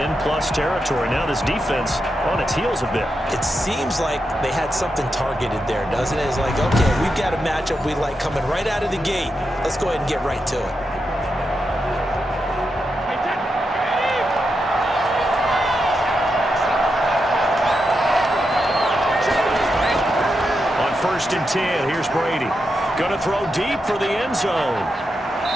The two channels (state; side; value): normal; both; correlation 0.86